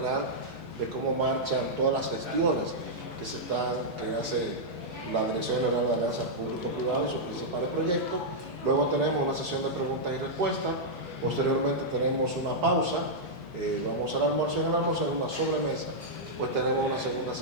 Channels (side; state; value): both; normal; correlation -0.07